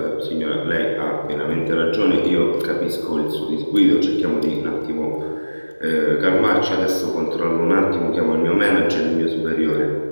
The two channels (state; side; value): inverted; both; correlation -1.00